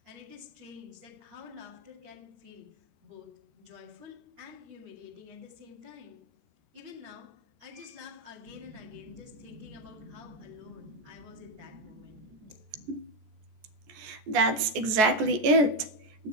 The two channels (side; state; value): left; late; 14 ms